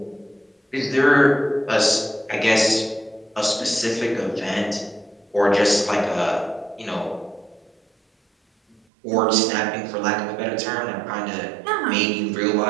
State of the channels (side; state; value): left; drops out; at 8.8 s